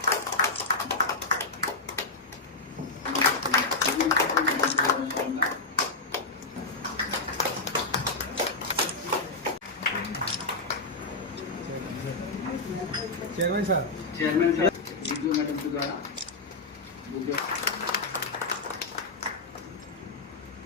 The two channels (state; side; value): quieter; right; 3.5 dB